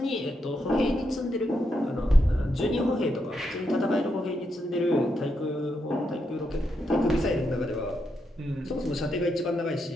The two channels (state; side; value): normal; both; correlation 0.82